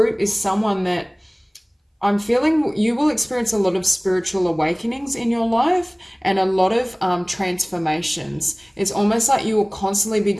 is someone that I'm feeling you will experience a lot of spiritual awakenings in your life and a lot of transformations. It's almost like you will constantly be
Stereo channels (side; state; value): both; identical; correlation 1.00